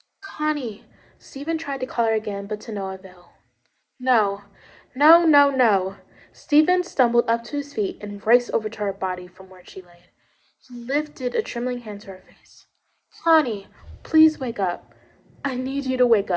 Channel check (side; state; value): both; identical; correlation 1.00